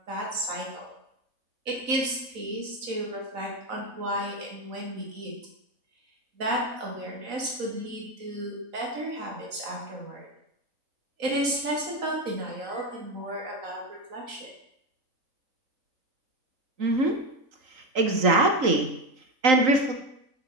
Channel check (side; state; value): left; late; 4.0 ms